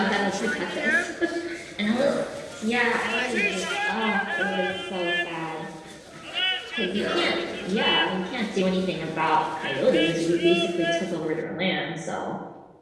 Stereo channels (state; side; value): identical; both; correlation 1.00